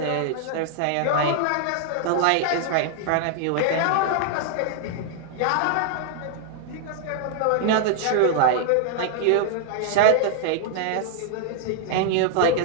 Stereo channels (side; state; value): both; different; correlation 0.00